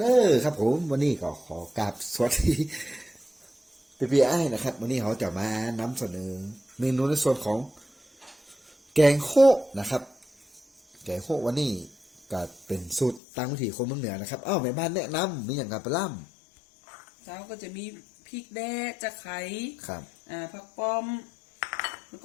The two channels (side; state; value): right; drops out; at 13.2 s